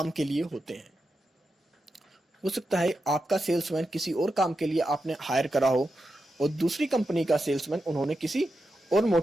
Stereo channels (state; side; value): normal; both; correlation 0.88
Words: के लिए होते हैं। हो सकता है आपका सेल्समैन किसी और काम के लिए आपने हायर करा हो और दूसरी कंपनी का सेल्समैन उन्होंने किसी और